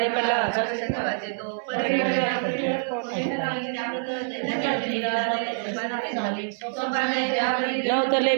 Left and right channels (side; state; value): left; silent; 61 dB below the other